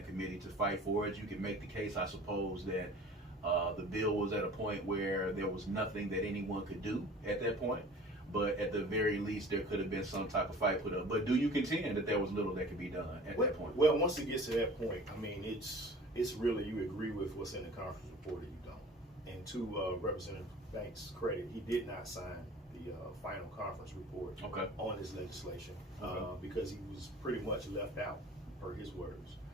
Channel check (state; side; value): normal; both; correlation 0.44